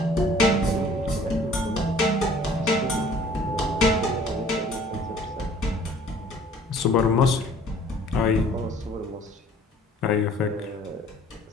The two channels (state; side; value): normal; both; correlation 0.53